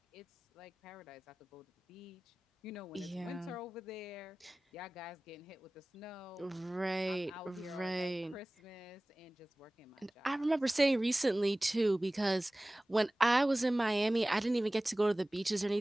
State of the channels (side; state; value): both; normal; correlation 0.98